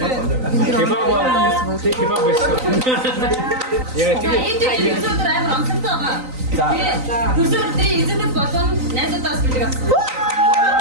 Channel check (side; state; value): left; late; 3.9 ms